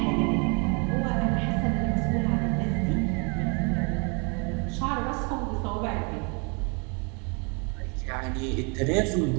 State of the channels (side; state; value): left; quieter; 34.0 dB